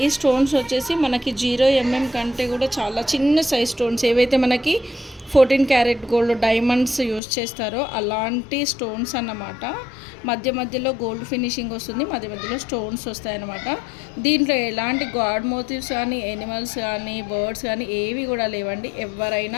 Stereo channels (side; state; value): right; drops out; at 7.2 s